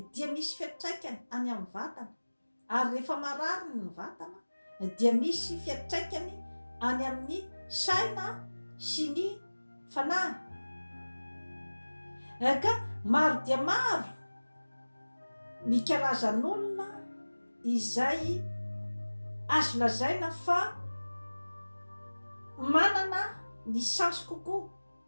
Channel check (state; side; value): inverted; both; correlation -1.00